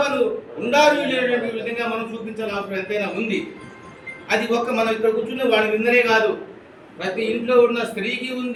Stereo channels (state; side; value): identical; both; correlation 1.00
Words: ఉండాలి విధంగా మనం చూపించాల్సిన అవసరం ఎంతైనా ఉంది. అది మనం ఇక్కడ కూర్చున్న వాడి విందనే కాదు, ప్రతి ఇంట్లో ఉన్న స్త్రీకి